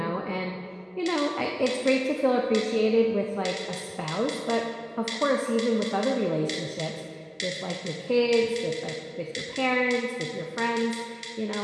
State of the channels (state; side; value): identical; both; correlation 1.00